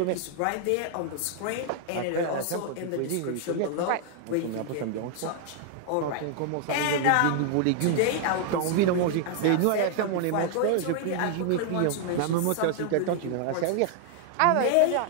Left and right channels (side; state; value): both; different; correlation 0.00